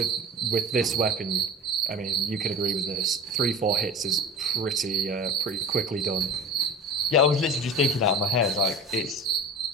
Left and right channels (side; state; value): both; normal; correlation 0.34